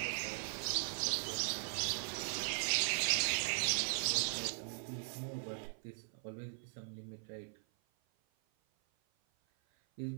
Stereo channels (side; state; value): left; silent; 51 dB below the other